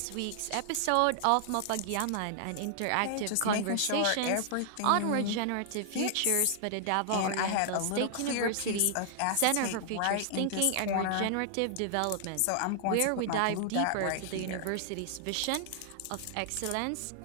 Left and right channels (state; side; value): different; both; correlation 0.00